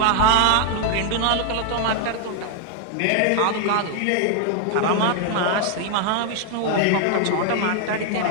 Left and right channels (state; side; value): different; both; correlation 0.00